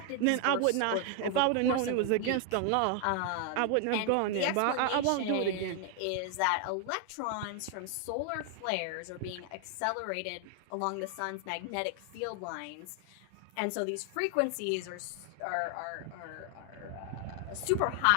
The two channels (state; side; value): different; both; correlation 0.00